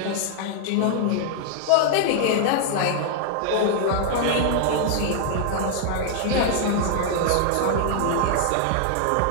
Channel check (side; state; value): both; different; correlation 0.00